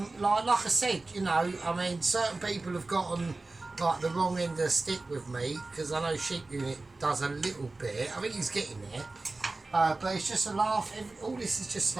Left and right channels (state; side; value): quieter; left; 3.3 dB